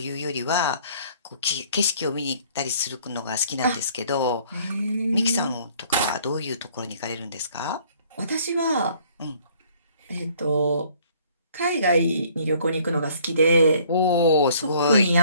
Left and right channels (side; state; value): both; inverted; correlation -0.58